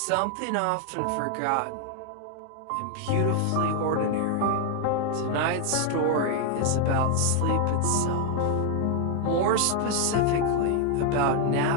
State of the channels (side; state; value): both; different; correlation 0.00